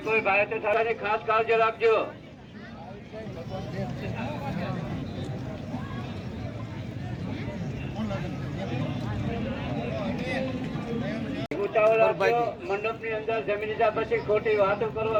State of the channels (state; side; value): identical; both; correlation 1.00